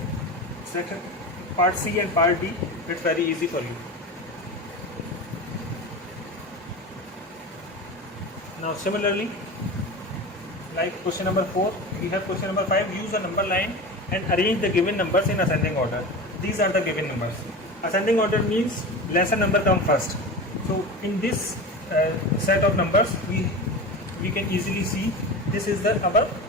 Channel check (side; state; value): both; normal; correlation 0.29